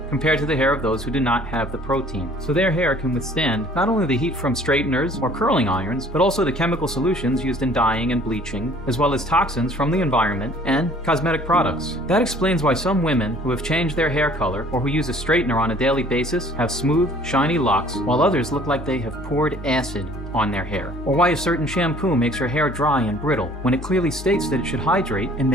compared to the hair of those who do not have the protein. So their hair can withstand not only the heat from straighteners or curling irons, but also the chemical solutions used in dyeing and bleaching, as well as toxins from the environment and cosmetic products. That explains why some women who have changed their hair color or who use a straightener on a daily basis have smooth, shiny locks, while others look like they have poured acid on their hair. Or why a certain shampoo makes your hair dry and brittle when it clearly states that it should hydrate and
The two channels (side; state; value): both; normal; correlation 0.53